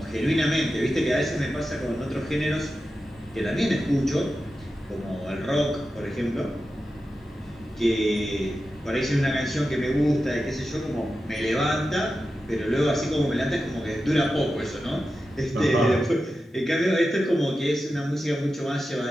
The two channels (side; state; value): both; normal; correlation 0.92